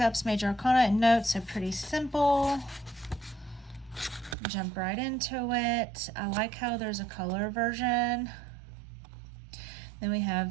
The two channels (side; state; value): left; drops out; at 4.4 s